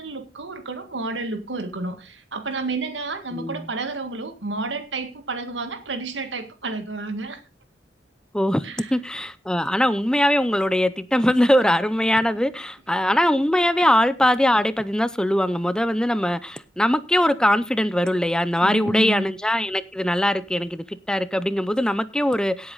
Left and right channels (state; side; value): normal; both; correlation 0.88